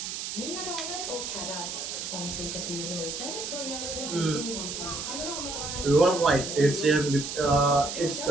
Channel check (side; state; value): right; noise; hiss, 5 dB below the sound